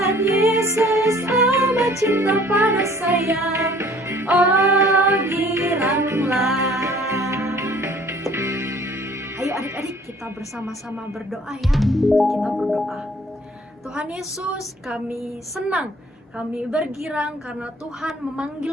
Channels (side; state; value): both; normal; correlation 0.54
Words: Yesus amat cinta pada saya. Oh giranglah. Ayo adik-adik, kita bersama-sama berdoa ya. Kita berdoa. Tuhan Yesus, kami senang, kami bergirang karena Tuhan